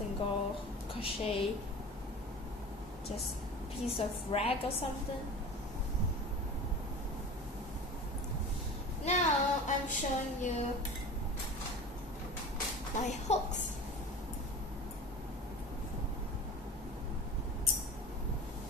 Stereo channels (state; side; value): normal; both; correlation 0.35